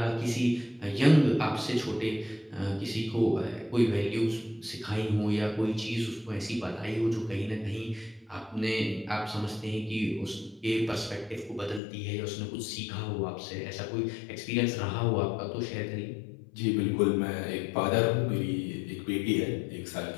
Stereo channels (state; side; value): drops out; right; at 11.8 s